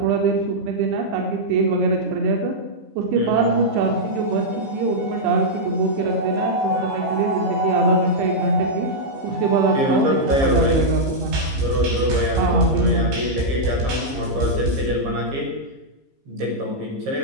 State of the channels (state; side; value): late; left; 15 ms